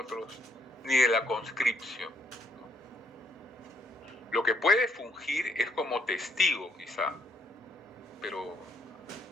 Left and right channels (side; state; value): both; normal; correlation 0.70